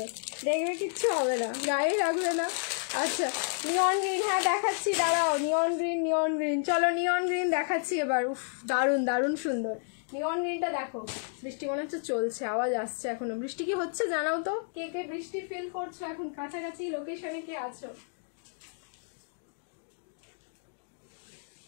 দেখবে কিচ্ছু হবে না, গায়ে লাগবে না। আচ্ছা নিয়ন গ্রিন, হ্যাঁ দেখাচ্ছি, দাঁড়াও। নিয়ন গ্রিন, চলো নিয়ন গ্রিন দেখাচ্ছি এবার। উফ, দারুণ দারুণ সুন্দর নিয়ন গ্রিনটা দেখো। বৃষ্টি মনে হচ্ছে চলছে, আওয়াজ আসছে এখনো। বৃষ্টি কি হচ্ছে জানাও তো, কে কে বৃষ্টি ফিল করছো এখন, কাছাকাছি লোকেশনে কে আছো।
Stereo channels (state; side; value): silent; right; digital silence